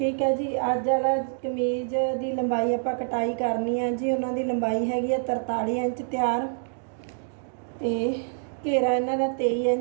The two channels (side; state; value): left; silent; digital silence